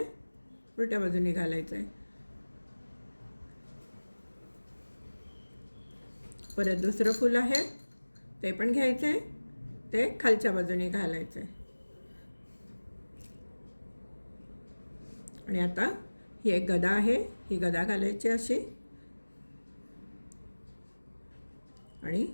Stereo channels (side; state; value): both; inverted; correlation -1.00